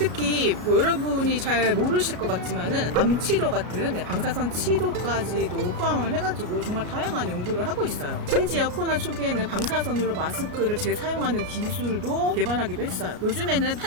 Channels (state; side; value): late; left; 34 ms